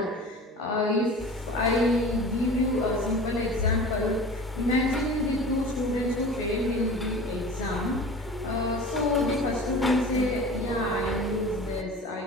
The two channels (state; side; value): normal; both; correlation 0.38